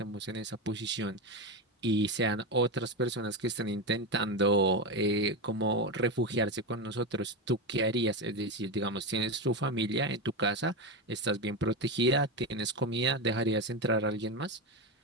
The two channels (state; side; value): normal; both; correlation 0.14